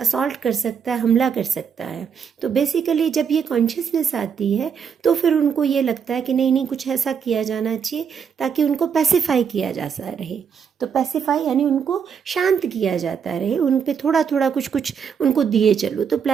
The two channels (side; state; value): left; quieter; 7.0 dB